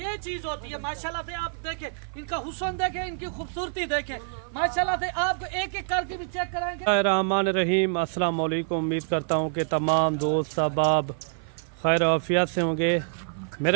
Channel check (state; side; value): silent; left; 55 dB below the other